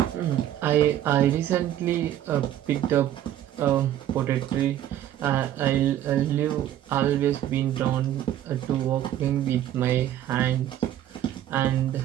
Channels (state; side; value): quieter; left; 11.9 dB